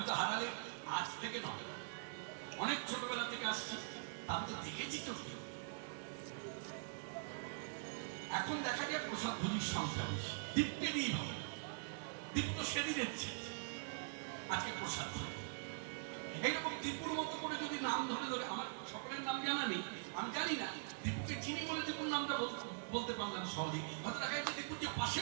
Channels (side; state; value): left; silent; digital silence